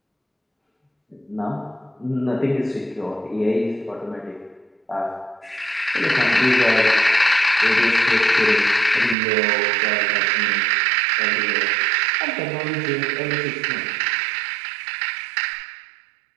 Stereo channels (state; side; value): drops out; left; at 9.2 s